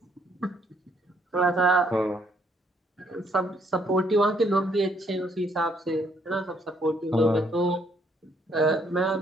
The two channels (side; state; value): both; normal; correlation 0.69